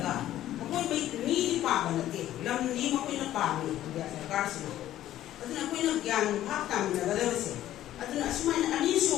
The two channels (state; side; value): quieter; right; 13.1 dB